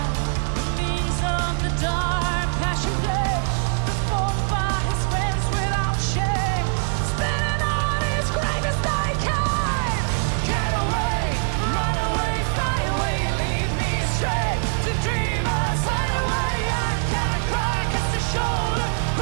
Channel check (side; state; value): left; silent; 63 dB below the other